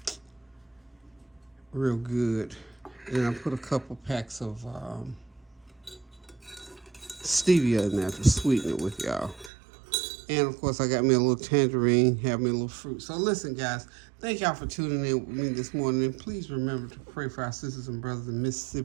real good. And I put a couple packs of stevia in there to sweeten it with y'all. And of course, I got me a little tangerine, have me a little fruit. So listen, guys, thank y'all for tuning in with me this morning. And please remember to pray for our sisters and brothers in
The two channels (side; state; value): left; drops out; at 9.5 s